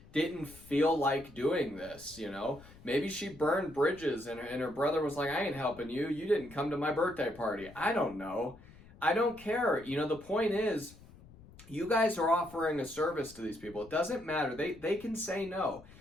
didn't feel like doing this, Maybe she burned bridges and her brother was like, I ain't helping you. You didn't come to my birthday party. I don't know. I don't care. The point is, you guys are offering a service to these people. It doesn't matter. They can say no.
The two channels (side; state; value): left; noise; rumble, 21 dB below the sound